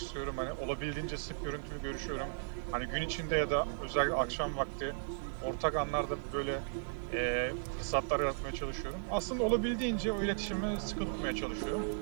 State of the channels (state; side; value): silent; left; digital silence